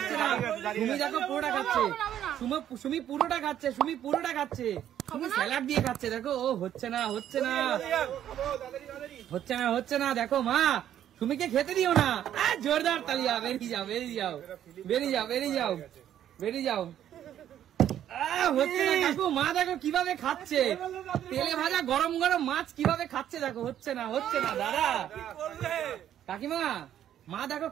না। সুমি দেখো পুরোটা খাচ্ছে, সুমি পুরোটা খাচ্ছে, সুমি পুরোটা খাচ্ছে, সুমি স্যালাড দিয়ে খাচ্ছে। দেখো ও হচ্ছে না হচ্ছে না হচ্ছে না হচ্ছে না। দেখো মা, সুমিকে খেতে দিও না। জোরদার তালিয়া, বেরিয়ে যাও বেরিয়ে যাও বেরিয়ে যাও বেরিয়ে যাও বেরিয়ে যাও। হচ্ছে না কাকু, মা দেখো কিভাবে খাচ্ছে তেলে ভাজা গরম গরম মাছ, কিভাবে খাচ্ছে দেখো। হচ্ছে না হচ্ছে না দাদা, কাকিমা মা দেখো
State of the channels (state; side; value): quieter; left; 10.8 dB